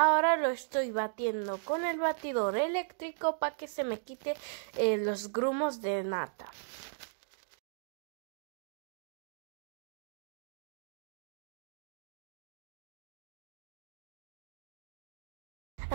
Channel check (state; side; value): silent; left; digital silence